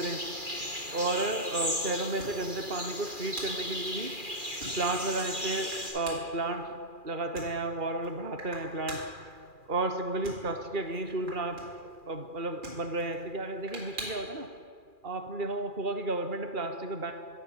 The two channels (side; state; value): left; late; 2.4 ms